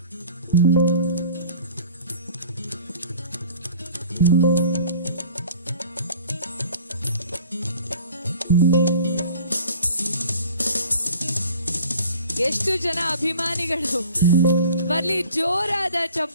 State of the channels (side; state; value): both; inverted; correlation -0.47